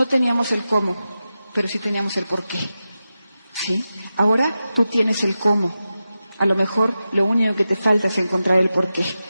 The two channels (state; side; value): inverted; both; correlation -0.92